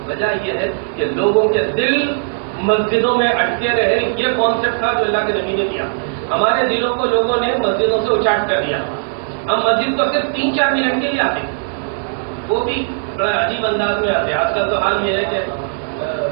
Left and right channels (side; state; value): left; silent; 58 dB below the other